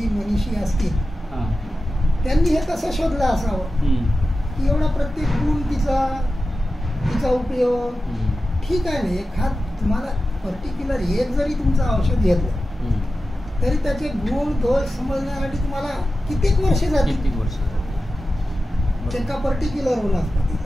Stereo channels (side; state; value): both; normal; correlation 0.93